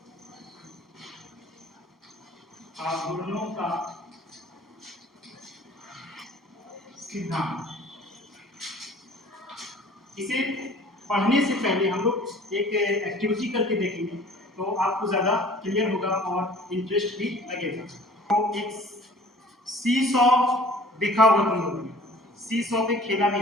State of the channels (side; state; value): both; normal; correlation 0.49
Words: आघूर्णों का सिद्धांत। इसे पढ़ने से पहले हम लोग एक एक्टिविटी करके देखेंगे तो आपको ज़्यादा क्लियर होगा और इंटरेस्ट भी लगेगा। तो एक सी सॉ देखा होगा तुम लोगों ने, सी सॉ पे खेला भी